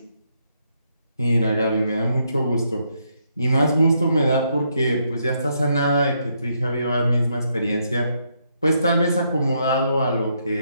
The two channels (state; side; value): inverted; both; correlation -0.76